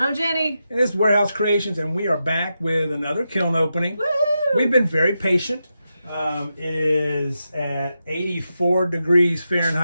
Jenny. And this is Warehouse Creations, and we are back with another kiln opening. Woohoo! We've been very patient. It is at 84 degrees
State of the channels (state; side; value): inverted; both; correlation -0.88